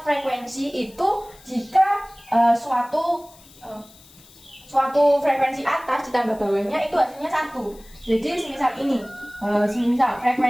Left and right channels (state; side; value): noise; left; hiss, 24 dB below the sound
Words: frekuensi itu jika suatu frekuensi atas ditambah bawahnya itu hasilnya 1. Jadi semisal ini,